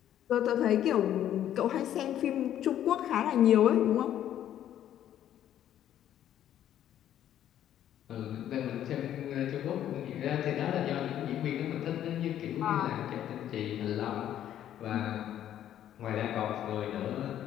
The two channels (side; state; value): right; quieter; 11.1 dB